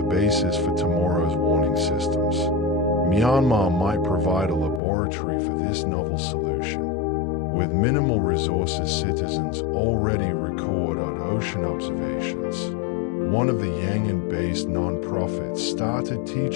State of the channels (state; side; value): drops out; right; at 4.8 s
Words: basis for tomorrow's warning systems. Myanmar might provide a laboratory for this novel solution. With minimal resources, citizens already record on ocean observations. One of the Yangon-based non-profits started